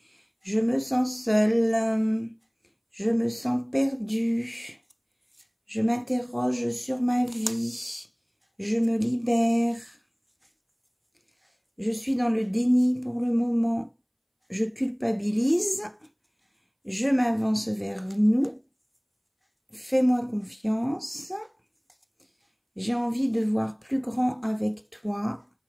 Je me sens seule. Je me sens perdue. Je m'interroge sur ma vie. Je me libère. Je suis dans le déni pour le moment. Je culpabilise. Je m'avance vers nous. Fais-moi confiance. J'ai envie de voir plus grand avec toi.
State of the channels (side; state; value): both; identical; correlation 1.00